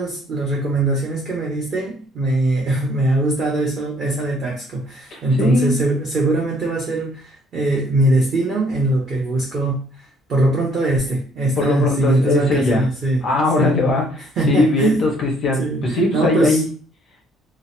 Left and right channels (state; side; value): normal; both; correlation 0.63